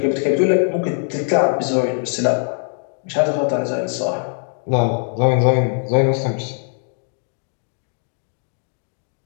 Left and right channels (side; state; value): right; silent; 59 dB below the other